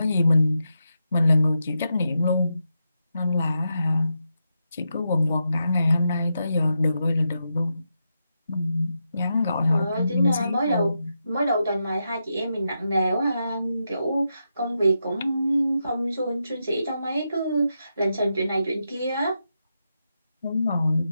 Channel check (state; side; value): inverted; both; correlation -0.85